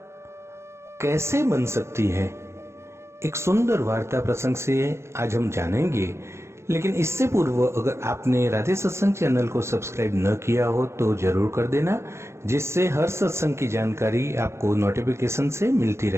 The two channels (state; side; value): late; left; 0.13 ms